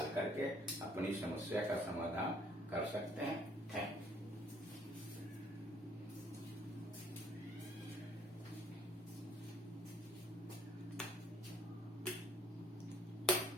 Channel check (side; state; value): both; normal; correlation 0.60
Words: करके अपनी समस्या का समाधान कर सकते हैं। Thank you.